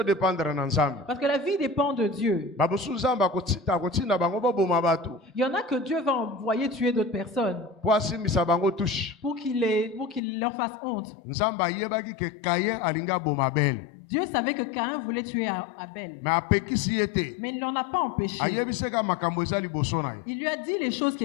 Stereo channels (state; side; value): drops out; right; at 10.2 s